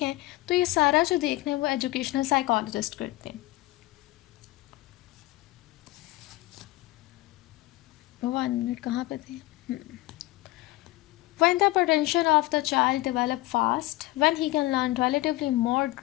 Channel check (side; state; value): right; quieter; 18.7 dB